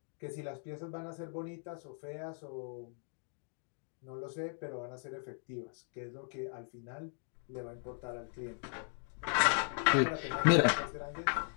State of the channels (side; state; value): right; silent; 53 dB below the other